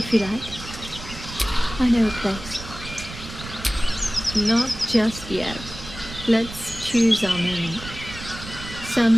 you like. I know a place. Not just yet. Let's choose our moment.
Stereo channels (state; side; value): noise; right; rumble, 12 dB below the sound